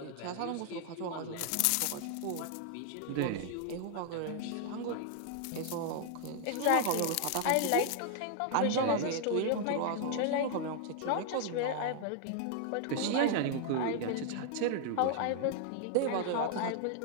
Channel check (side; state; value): both; different; correlation 0.00